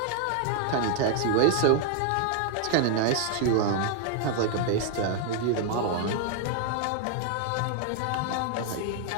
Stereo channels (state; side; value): different; both; correlation 0.00